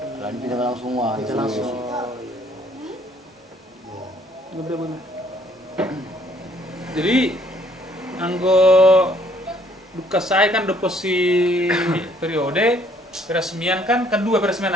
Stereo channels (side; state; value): both; normal; correlation 0.62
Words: lan pindah langsung wah langsung jadi anggo duka saya kan deposi periode peresmian kan kedua peresmian